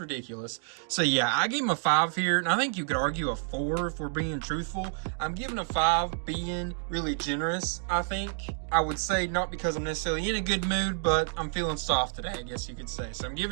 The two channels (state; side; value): silent; left; digital silence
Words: So yeah, I gave him a 5 here, and I think you could argue a 4 if we're being truthful. I'm giving a 5 being really generous, I think. I would say not because I'm necessarily in a good mood, but I'm feeling soft today, I guess you could say. So I'm